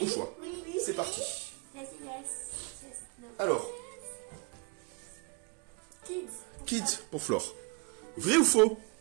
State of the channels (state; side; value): quieter; left; 31.3 dB